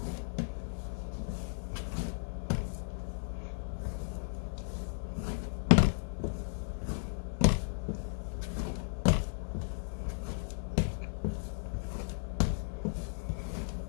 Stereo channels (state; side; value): silent; right; digital silence